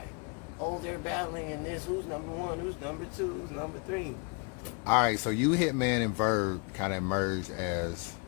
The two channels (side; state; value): right; quieter; 33.7 dB